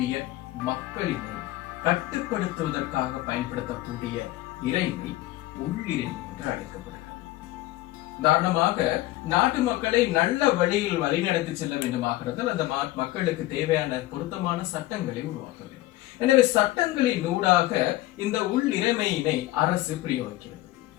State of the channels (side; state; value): right; quieter; 17.1 dB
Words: மக்களினை கட்டுப்படுத்துவதற்காக பயன்படுத்தக்கூடிய இறைமை உள்ளிறைமை என்று அழைக்கப்படுகிறது. உதாரணமாக நாட்டு மக்களை நல்ல வழியில் வழிநடத்தி செல்ல வேண்டுமாகிறது அந்த மக்களுக்கு தேவையான பொருத்தமான சட்டங்களை உருவாக்க வேண்டும். எனவே சட்டங்களின் ஊடாக இந்த உள் இறைமையினை அரசு பிரயோகிக்கிறது.